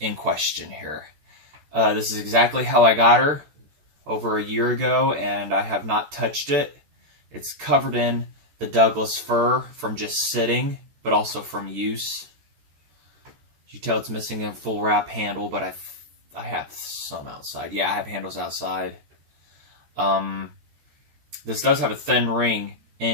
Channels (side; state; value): left; late; 14 ms